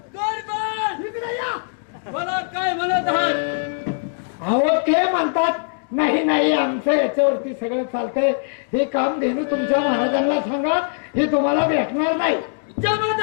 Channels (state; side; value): silent; right; digital silence